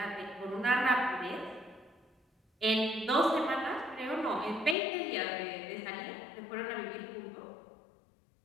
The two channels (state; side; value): drops out; right; at 4.8 s